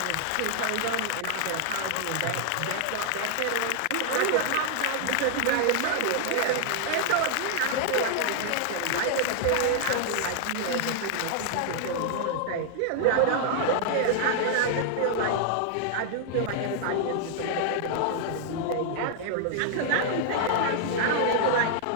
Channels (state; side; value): different; both; correlation -0.01